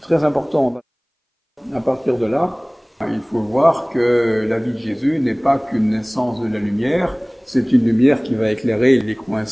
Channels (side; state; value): both; identical; correlation 1.00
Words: Très important. À partir de là, il faut voir que la vie de Jésus n'est pas qu'une naissance de la lumière, c'est une lumière qui va éclairer les coins